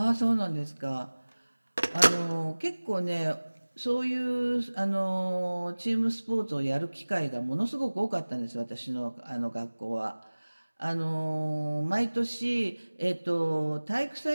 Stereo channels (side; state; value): both; inverted; correlation -1.00